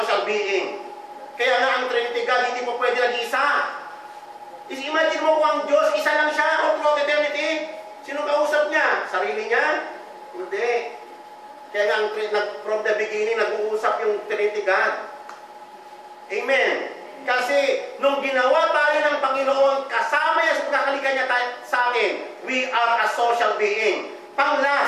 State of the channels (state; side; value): identical; both; correlation 1.00